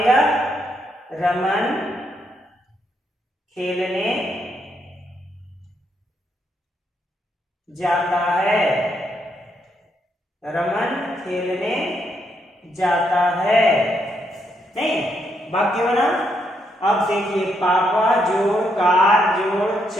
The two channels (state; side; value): normal; both; correlation 0.77